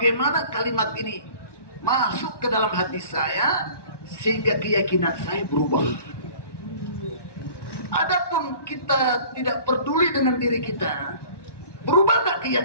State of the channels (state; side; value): late; right; 1.1 ms